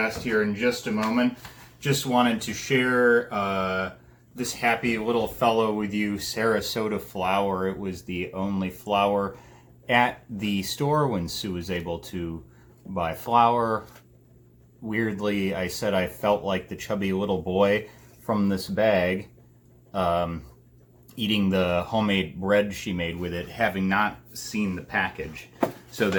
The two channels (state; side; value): identical; both; correlation 1.00